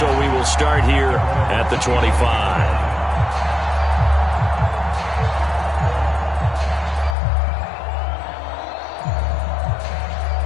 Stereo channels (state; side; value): drops out; right; at 7.2 s